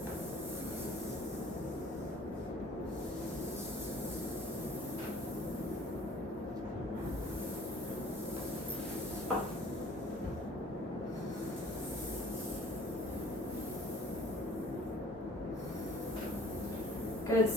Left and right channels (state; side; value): normal; both; correlation 0.52